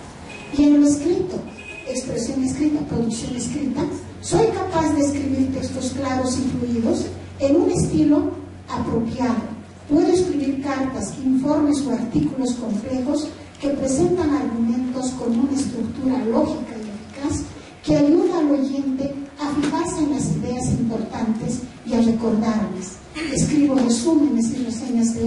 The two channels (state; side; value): identical; both; correlation 1.00